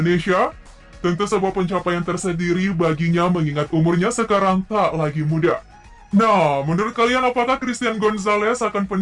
Tentu sebuah pencapaian tersendiri baginya mengingat umurnya sekarang tak lagi muda. Nah, menurut kalian apakah Christian Gonzalez akan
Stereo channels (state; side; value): identical; both; correlation 1.00